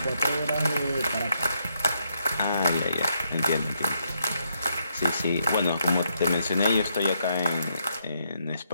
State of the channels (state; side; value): inverted; both; correlation -0.77